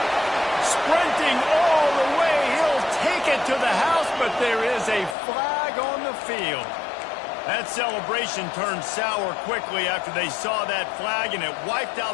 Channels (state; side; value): drops out; right; at 5.2 s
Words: sprinting all the way. He'll take it to the house, but there is a flag on the field. That celebration turned sour quickly after they saw that flag, and it wiped